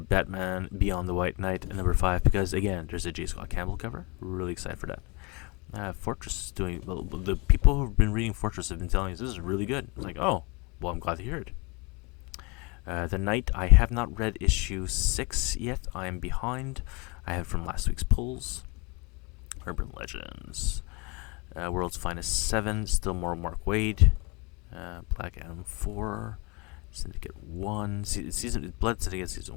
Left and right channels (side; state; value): right; quieter; 28.5 dB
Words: Beyond the White Knight number 5 because, again, there's a J. Scott Campbell cover. Really excited for that. Fortress is doing well. The people who've been reading Fortress have been telling us this is really good. It's like, oh, well, I'm glad to hear it. The Knight, I have not read issue 6 yet. I am behind. I have from last week's pulls. Urban Legends. World's Finest 7, still more Mark Waid. Black Adam 4. Syndicate 1. Blood Syndicate Season